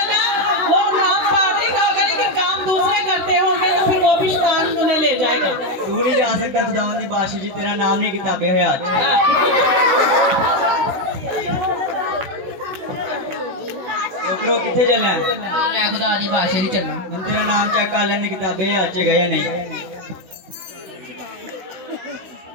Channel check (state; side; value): late; left; 16 ms